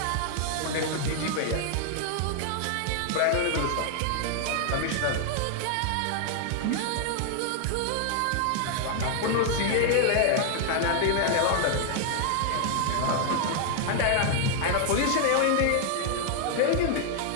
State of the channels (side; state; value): both; different; correlation 0.00